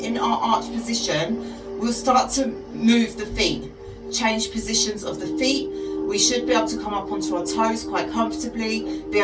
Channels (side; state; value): both; identical; correlation 1.00